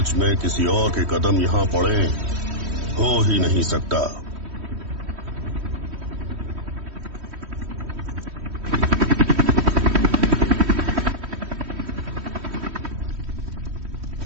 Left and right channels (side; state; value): left; late; 3.1 ms